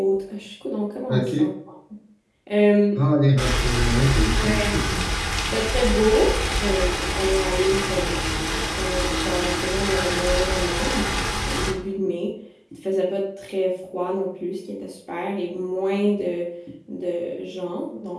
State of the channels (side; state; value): both; identical; correlation 1.00